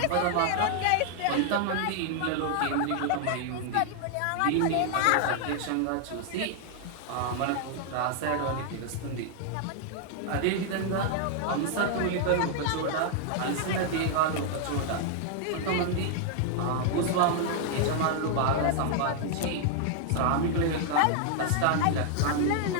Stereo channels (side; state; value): both; different; correlation 0.00